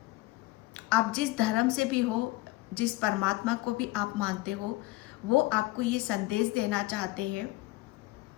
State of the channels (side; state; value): right; quieter; 20.0 dB